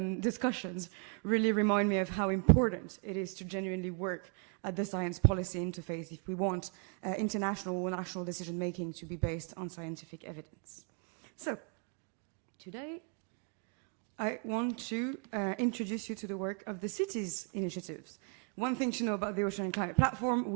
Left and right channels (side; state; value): left; quieter; 35.2 dB